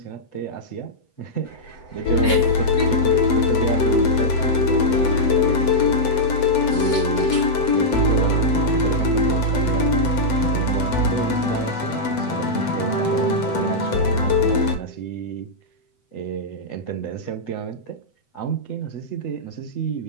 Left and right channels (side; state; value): right; late; 7.9 ms